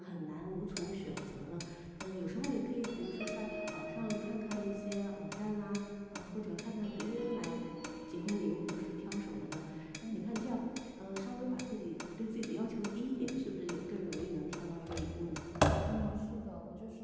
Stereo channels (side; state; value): both; identical; correlation 1.00